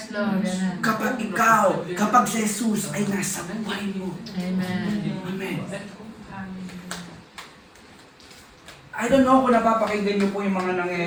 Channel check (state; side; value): identical; both; correlation 1.00